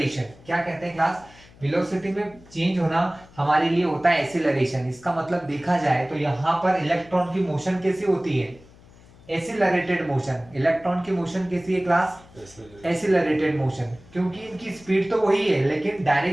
क्या कहते हैं क्लास, वेलोसिटी में चेंज होना हमारे लिए होता है एक्सीलरेशन। इसका मतलब देखा जाए तो यहाँ पर इलेक्ट्रॉन की मोशन कैसी होती है, एक्सीलरेटेड मोशन। इलेक्ट्रॉन की मोशन कैसी है क्लास, एक्सीलरेटेड मोशन, क्योंकि इनकी स्पीड तो वही है लेकिन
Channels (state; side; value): noise; left; hum, 24 dB below the sound